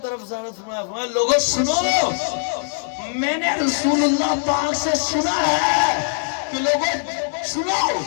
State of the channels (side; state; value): right; silent; digital silence